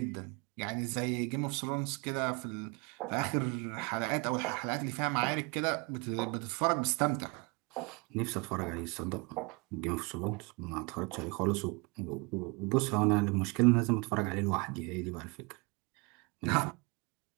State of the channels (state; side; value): quieter; left; 29.0 dB